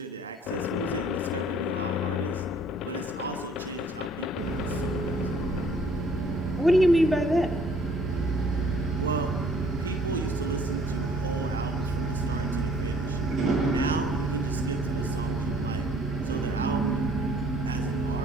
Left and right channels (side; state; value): both; normal; correlation 0.58